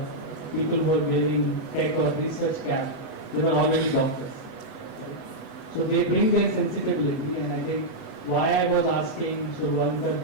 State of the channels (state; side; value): late; right; 8.0 ms